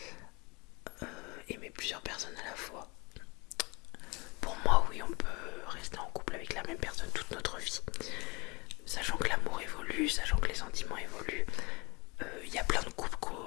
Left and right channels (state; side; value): quieter; right; 27.1 dB